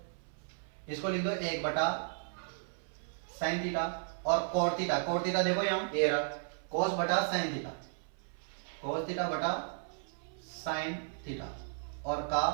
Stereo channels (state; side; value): silent; left; 55 dB below the other